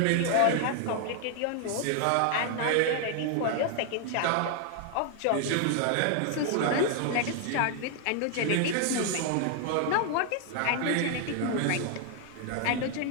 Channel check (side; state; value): both; different; correlation 0.00